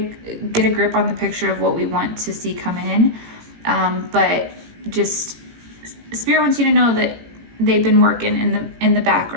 get a grip on the picture of what we want to see come in, but just Spirit wants you to know that they've been working in the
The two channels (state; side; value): late; left; 18 ms